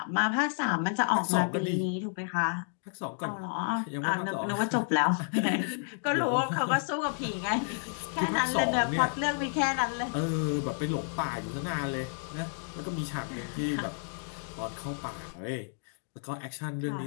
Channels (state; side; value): silent; right; 57 dB below the other